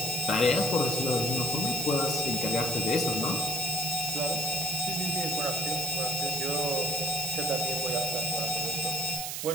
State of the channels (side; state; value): right; noise; hiss, 4 dB below the sound